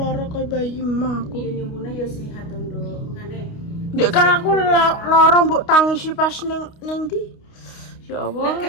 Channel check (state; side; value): late; right; 29 ms